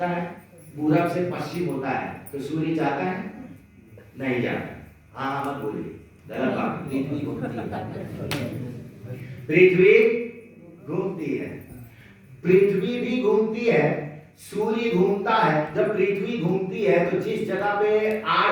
है? पूरब से पश्चिम होता है। तो सूर्य जाता है? नहीं जाता। हाँ मत बोलिए, गलत बात। पृथ्वी घूमती है, पृथ्वी घूमती है, पृथ्वी भी घूमती है, सूर्य घूमता है। जब पृथ्वी घूमती है तो जिस जगह पे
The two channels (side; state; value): both; identical; correlation 1.00